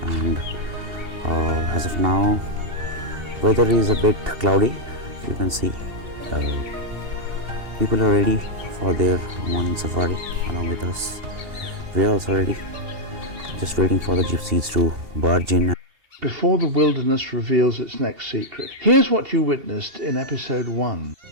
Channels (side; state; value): left; late; 2.8 ms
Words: and as of now, weather is a bit cloudy. You can see people are ready for their morning safari along with us. We are also ready, just waiting for the gypsies to barge in. Before the wilderness reveals its next secret, here's what you witnessed in Episode 1.